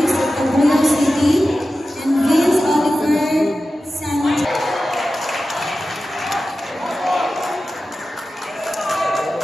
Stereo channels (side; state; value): both; normal; correlation 0.94